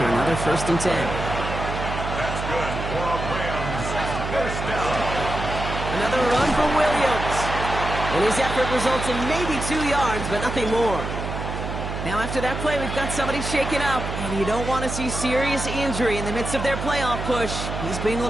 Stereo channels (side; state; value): right; noise; hum, 5 dB below the sound